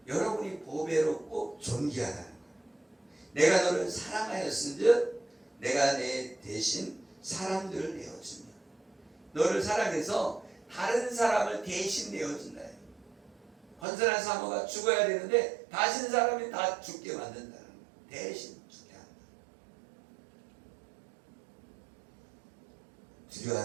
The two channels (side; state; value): left; drops out; at 13.9 s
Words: 여러분이 보배롭고 존귀하다는 거예요. 내가 너를 사랑하였은즉 내가 내 대신 사람들을 내어주며, 너를 사랑해서 다른 사람을 대신 내어준다. 건선한 사모가 죽어야 되는데 다신 사람이 다 죽게 만든다는 거예요. 대신 죽게 한다.